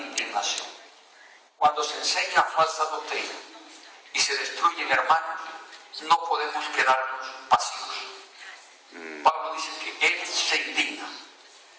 Cuando se enseña falsa doctrina y se destruyen hermanos, no podemos quedarnos pasivos. Pablo dice que él se indigna,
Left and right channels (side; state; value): both; identical; correlation 1.00